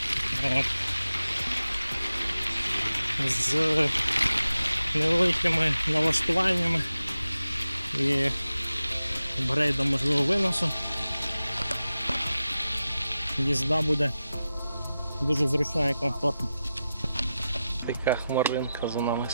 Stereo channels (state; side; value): inverted; both; correlation -0.93